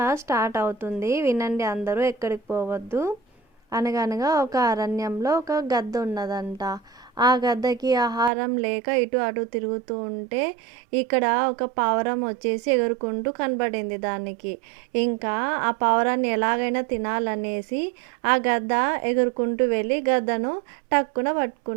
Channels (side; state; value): left; drops out; at 8.3 s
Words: స్టార్ట్ అవుతుంది, వినండి అందరూ, ఎక్కడికి పోవద్దు. అనగనగా ఒక అరణ్యంలో ఒక గద్ద ఉన్నదంట. ఆ గద్దకి ఆహారం లేక ఇటు అటు తిరుగుతూ ఉంటే ఇక్కడ ఒక పావురం వచ్చేసి ఎగురుకుంటూ కనబడింది దానికి. ఇంకా ఆ పావురాన్ని ఎలాగైనా తినాలనేసి ఆ గద్ద ఎగురుకుంటూ వెళ్ళి గద్దను టక్కున